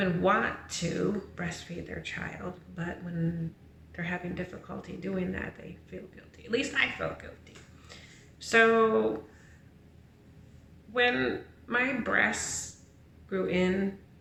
want to breastfeed their child, but when they're having difficulty doing that, they feel guilty. At least I felt guilty. So when my breasts grew in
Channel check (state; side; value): identical; both; correlation 1.00